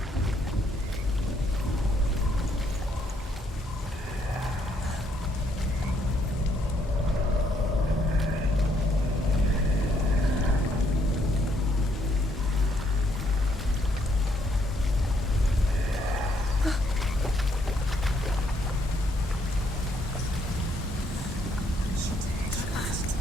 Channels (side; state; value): both; normal; correlation 0.71